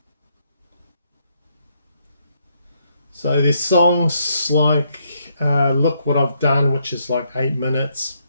So there's songs like Look What I've Done, which is like 8 minutes.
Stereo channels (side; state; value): both; inverted; correlation -0.74